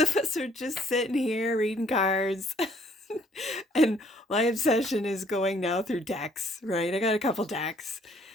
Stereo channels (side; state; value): both; normal; correlation 0.62